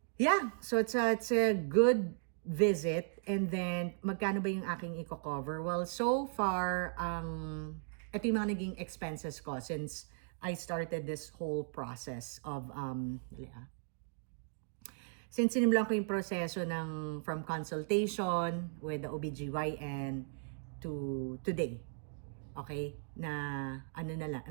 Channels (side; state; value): left; silent; digital silence